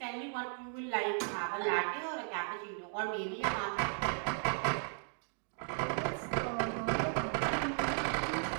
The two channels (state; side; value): silent; left; 54 dB below the other